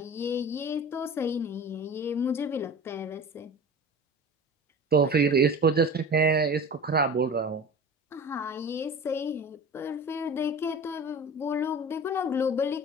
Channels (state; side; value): normal; both; correlation 0.36